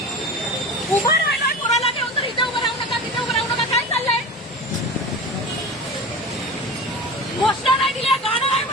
उभं राहिलाय कोणाला घेऊन तर इथे उभं राहू नका, तिथे उभं राहू नका. काय चाललंय? घोषणा नाही दिल्या, गाणं नाही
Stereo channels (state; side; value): normal; both; correlation 0.31